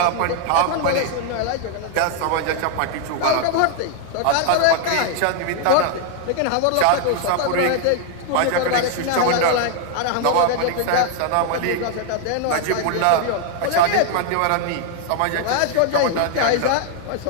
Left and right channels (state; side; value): different; both; correlation 0.00